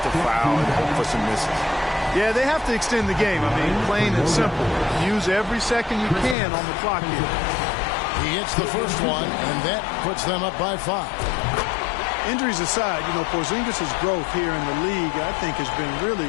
to foul and hope for some misses. Yeah, they have to extend the game. I mean, plain and simple. Use every second you can on the clock here. He hits the first one, and that puts them up by 5. Injuries aside, you know, Porzingis' growth here in the league, I think, has been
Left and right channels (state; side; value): drops out; right; at 6.4 s